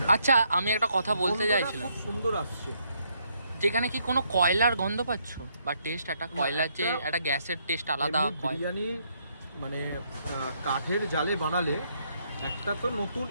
আচ্ছা, আমি একটা কথা বলতে গন্ধটা চাইছিলাম, খুব সুন্দর আসছে। যেখানে কি কোনো কয়লার গন্ধ পাচ্ছ বা টেস্ট? একটা কয়লার যে একটা গ্যাসের টেস্ট আলাদা এমনি বিরিয়ানি মানে কাঠের জালে বানালে একটা তো নতুন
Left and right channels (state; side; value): inverted; both; correlation -0.73